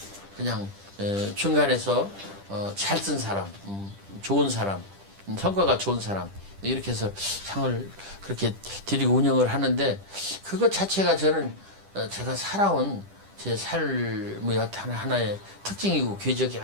그냥 중간에서 잘 쓴 사람, 좋은 사람, 성과가 좋은 사람, 이렇게 해서 상을 그렇게 드리고 운영을 하는데, 그것 자체가 저는 제가 살아온 제 삶의 어떤 하나의 특징이고 궤적이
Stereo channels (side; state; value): left; late; 10 ms